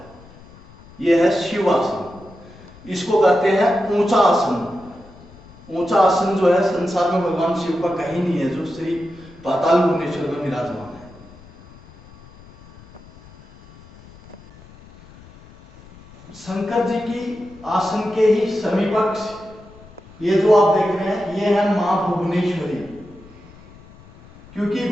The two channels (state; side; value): noise; left; rumble, 22 dB below the sound